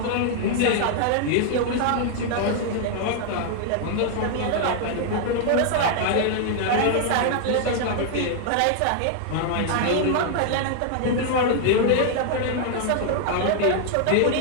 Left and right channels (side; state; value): both; different; correlation 0.00